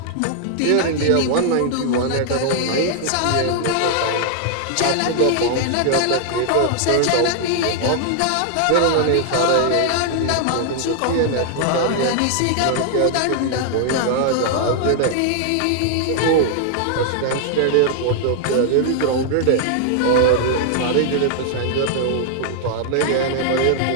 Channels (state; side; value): different; both; correlation 0.00